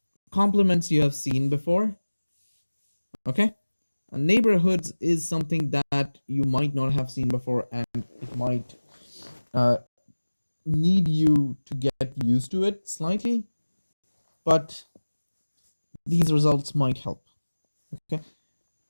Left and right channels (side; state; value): both; inverted; correlation -1.00